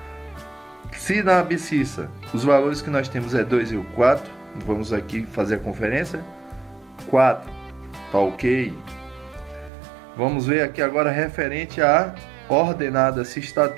se na abscissa os valores que nós temos é 2 e o 4, vamos aqui fazer a conferência. 4, tá ok. Vamos ver aqui agora referente à ordenada, se está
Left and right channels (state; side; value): drops out; left; at 9.7 s